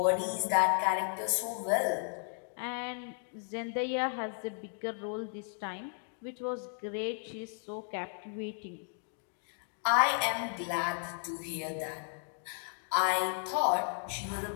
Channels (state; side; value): silent; right; 55 dB below the other